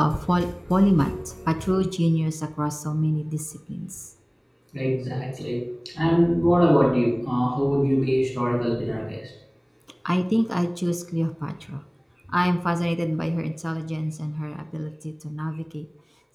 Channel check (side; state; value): both; identical; correlation 1.00